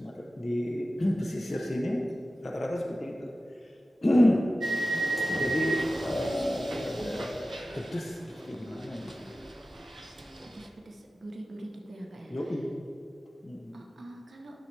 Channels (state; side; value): normal; both; correlation 0.95